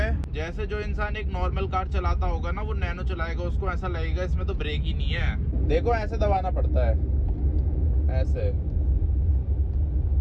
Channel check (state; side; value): identical; both; correlation 1.00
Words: जैसे जो इंसान एक नॉर्मल कार चलाता होगा ना, वो नैनो चलाएगा, उसको ऐसा लगेगा इसमें तो ब्रेक ही नहीं है। देखो ऐसे दबाना पड़ता है, ऐसे।